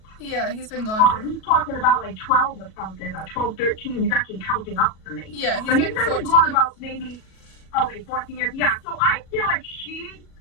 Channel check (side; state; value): right; late; 37 ms